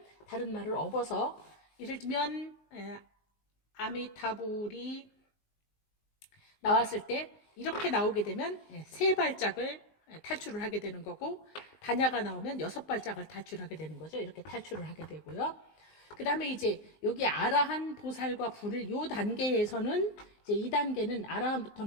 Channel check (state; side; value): late; right; 19 ms